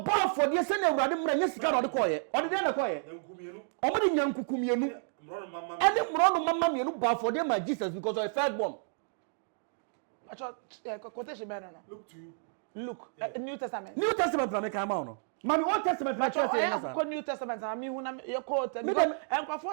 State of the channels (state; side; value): silent; left; digital silence